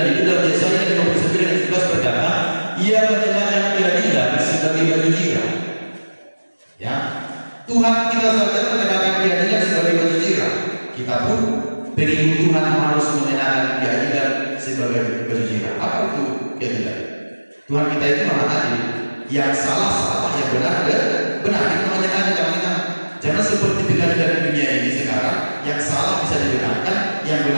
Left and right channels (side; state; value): both; inverted; correlation -1.00